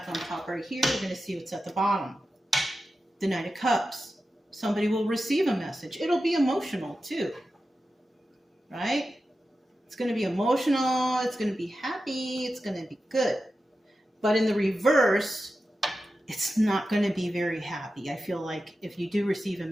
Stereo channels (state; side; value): normal; both; correlation 0.92